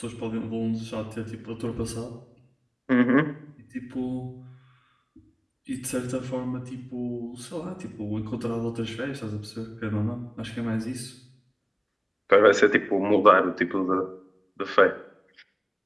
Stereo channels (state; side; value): identical; both; correlation 1.00